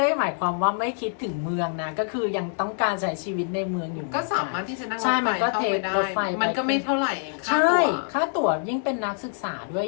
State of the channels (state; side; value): silent; right; 62 dB below the other